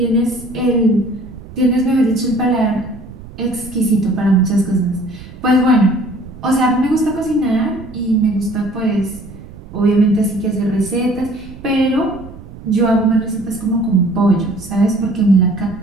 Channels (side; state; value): right; noise; rumble, 16 dB below the sound